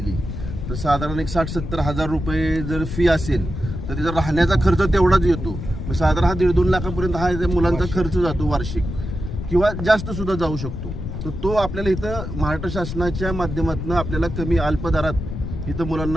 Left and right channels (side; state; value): left; noise; rumble, 6 dB below the sound